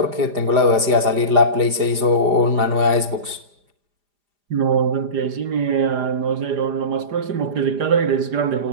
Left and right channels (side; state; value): left; late; 4.9 ms